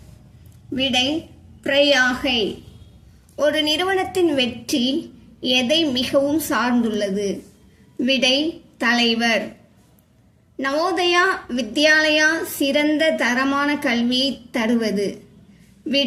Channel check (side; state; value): both; identical; correlation 1.00